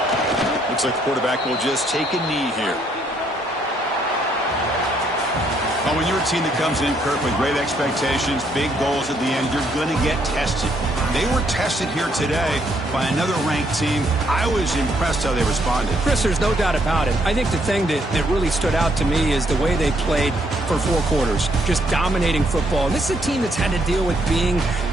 Looks like the quarterback will just take a knee here. Well, when you're a team that comes in, Kirk, with great expectations, big goals at the end, you're going to get tested. They were tested here today by another ranked team. I was impressed how they responded. Chris, there's no doubt about it. I think the thing that really stood out to me is the way they played for 4 quarters, just dominating football. And this is a team that's had to deal with being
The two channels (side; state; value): both; normal; correlation 0.71